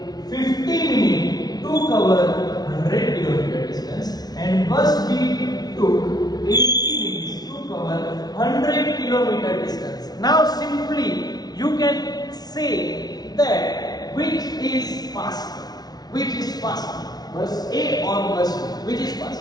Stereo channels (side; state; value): right; late; 0.19 ms